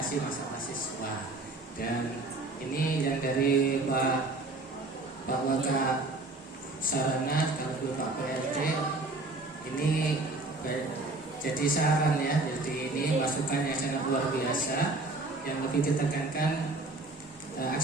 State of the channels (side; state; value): left; quieter; 3.1 dB